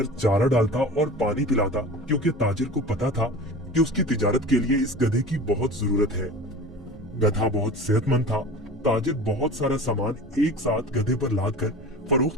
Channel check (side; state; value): both; normal; correlation 0.36